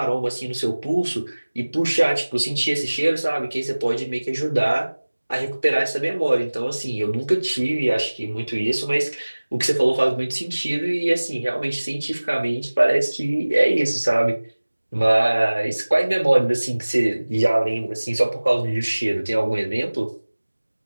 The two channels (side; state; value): both; inverted; correlation -1.00